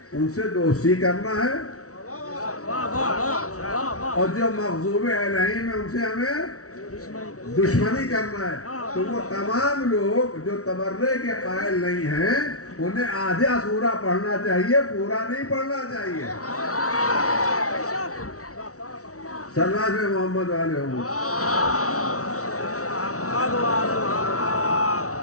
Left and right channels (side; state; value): right; late; 0.65 ms